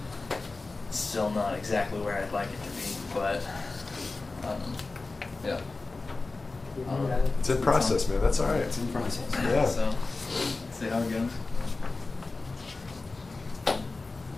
It's still not exactly where I'd like it to be, but yeah. It's in process, man. That's all right. It's in process. Yeah. So, see how it goes.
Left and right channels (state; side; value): quieter; right; 3.6 dB